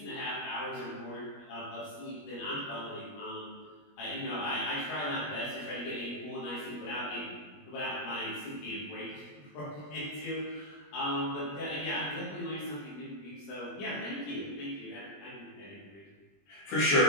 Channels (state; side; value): late; right; 21 ms